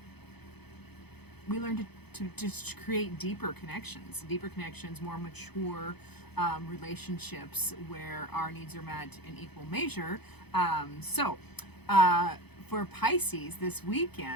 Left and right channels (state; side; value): late; right; 0.98 ms